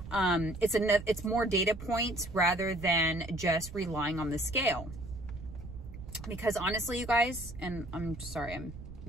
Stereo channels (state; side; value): noise; right; rumble, 13 dB below the sound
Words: it's more data points rather than just relying on the scale. Because honestly, you guys, and I'm sorry, I'm